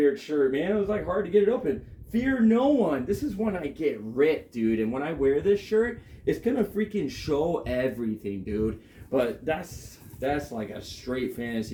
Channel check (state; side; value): identical; both; correlation 1.00